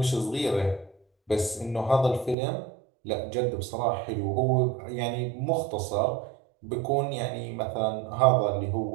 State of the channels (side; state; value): left; drops out; at 2.4 s